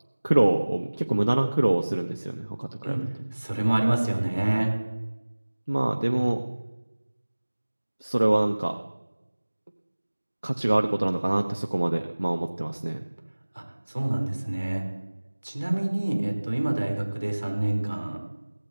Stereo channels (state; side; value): inverted; both; correlation -1.00